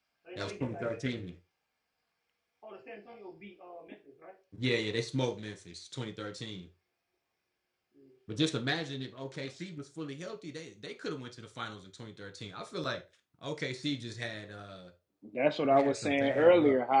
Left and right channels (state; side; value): identical; both; correlation 1.00